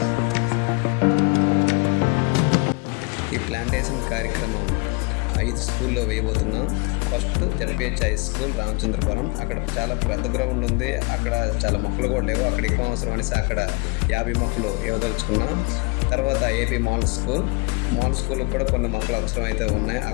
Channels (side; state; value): right; quieter; 28.8 dB